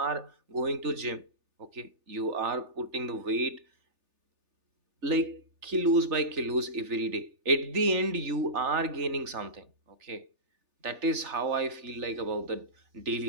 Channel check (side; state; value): left; late; 3.4 ms